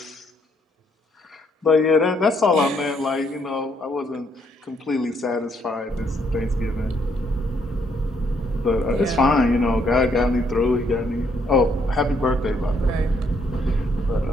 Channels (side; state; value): both; normal; correlation 0.71